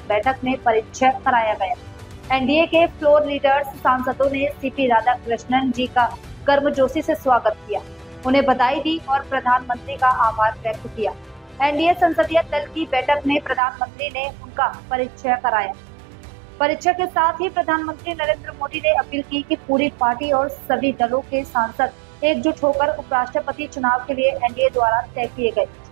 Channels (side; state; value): left; drops out; at 13.6 s